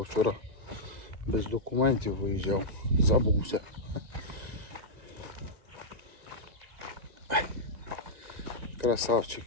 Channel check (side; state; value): left; late; 2.0 ms